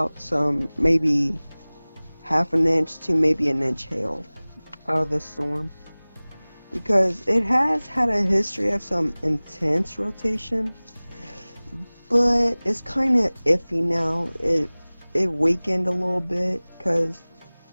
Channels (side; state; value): both; inverted; correlation -1.00